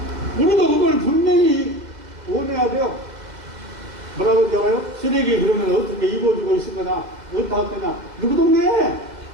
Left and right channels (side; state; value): left; late; 2.0 ms